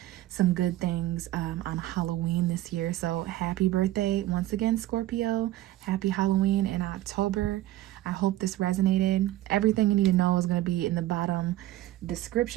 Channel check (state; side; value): quieter; left; 15.3 dB